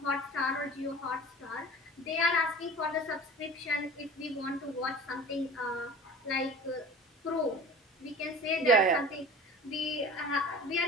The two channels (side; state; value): both; normal; correlation 0.40